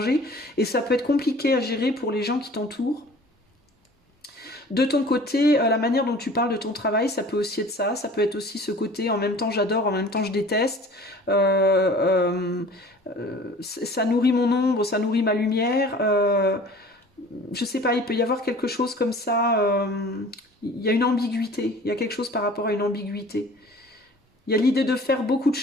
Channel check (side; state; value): both; normal; correlation 0.46